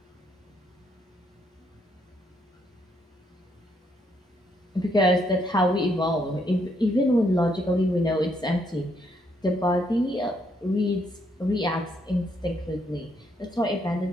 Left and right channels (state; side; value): normal; both; correlation 0.73